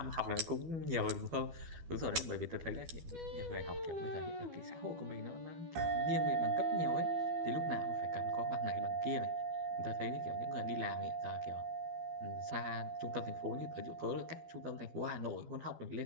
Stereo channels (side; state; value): left; late; 12 ms